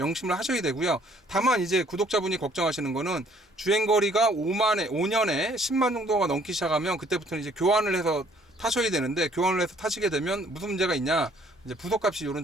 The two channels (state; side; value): normal; both; correlation 0.61